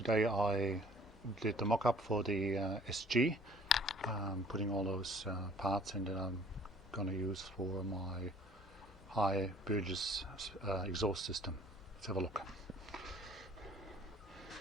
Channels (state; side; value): normal; both; correlation 0.53